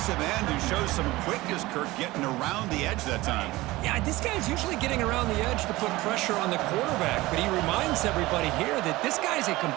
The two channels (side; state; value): left; quieter; 19.3 dB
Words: end, who shows some quickness, Kirk, getting around the edge that time. Yeah, this guy's usually getting around the edge to put pressure on the quarterback, but he reminds everybody here that this guy's a